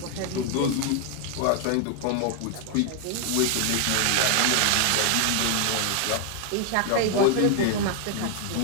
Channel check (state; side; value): different; both; correlation 0.00